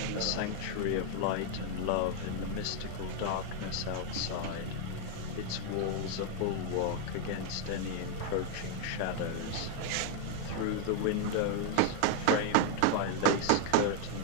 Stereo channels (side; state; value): both; different; correlation 0.00